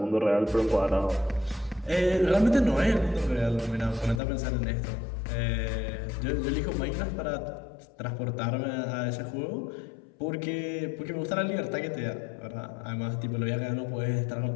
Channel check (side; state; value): right; drops out; at 4.2 s